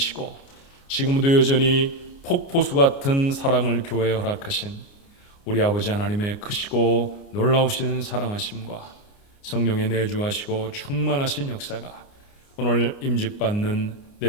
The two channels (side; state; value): right; late; 29 ms